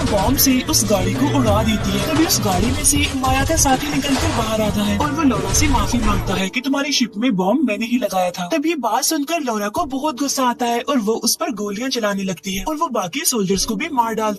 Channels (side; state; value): both; identical; correlation 1.00